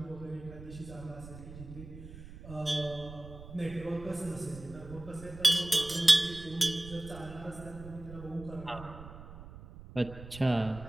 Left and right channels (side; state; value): right; noise; rumble, 14 dB below the sound